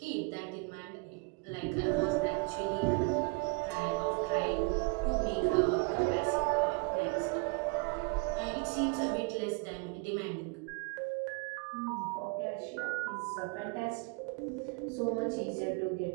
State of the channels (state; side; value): quieter; left; 31.3 dB